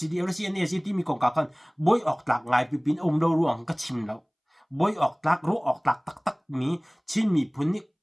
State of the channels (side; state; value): both; identical; correlation 1.00